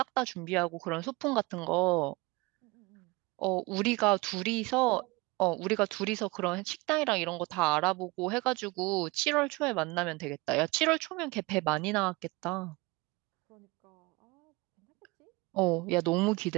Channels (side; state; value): left; quieter; 24.2 dB